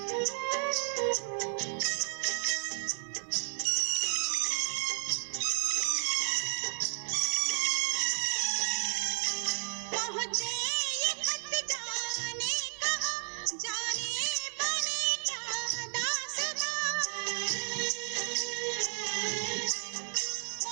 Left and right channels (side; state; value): left; silent; 55 dB below the other